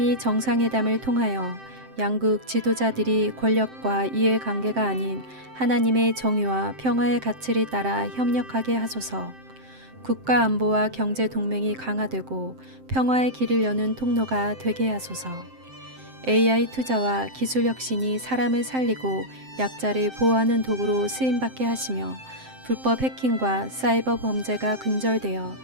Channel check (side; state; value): left; late; 7.7 ms